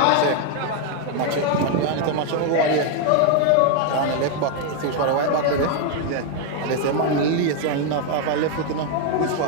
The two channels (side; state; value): both; different; correlation 0.01